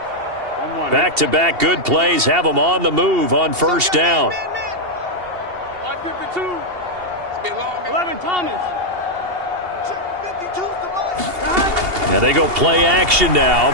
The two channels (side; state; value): left; late; 2.8 ms